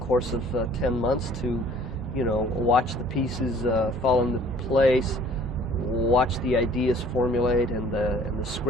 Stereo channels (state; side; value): normal; both; correlation 0.54